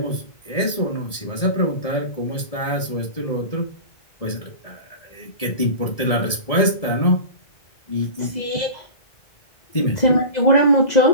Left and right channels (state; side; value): late; right; 1.7 ms